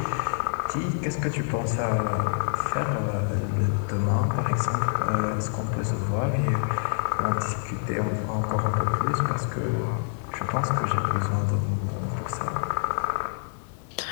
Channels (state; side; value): silent; right; 60 dB below the other